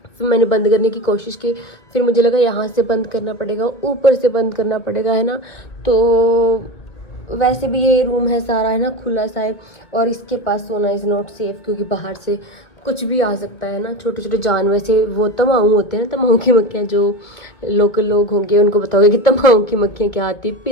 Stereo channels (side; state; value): right; late; 2.0 ms